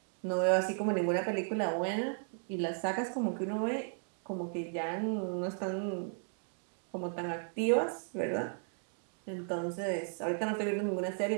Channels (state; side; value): silent; left; 54 dB below the other